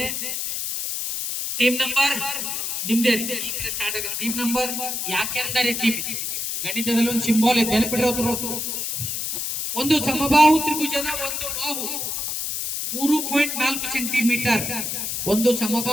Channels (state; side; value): noise; left; hiss, 2 dB below the sound